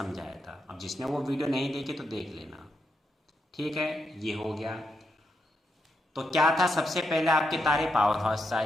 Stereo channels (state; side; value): normal; both; correlation 0.82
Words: था। अब जिसने वो वीडियो नहीं देखी तो देख लेना, ठीक है। ये हो गया। तो क्या था, सबसे पहले आपके तारे पावर हाउस से